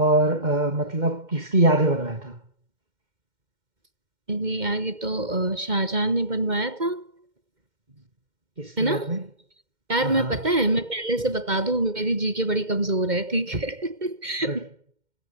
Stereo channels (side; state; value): left; late; 2.1 ms